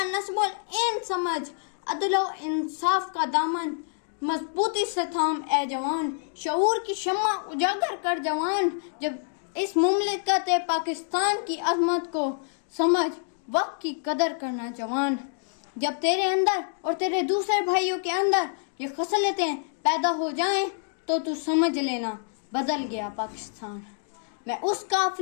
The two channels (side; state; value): right; silent; digital silence